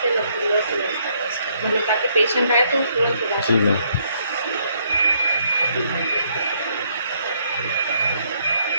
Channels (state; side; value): inverted; both; correlation -0.70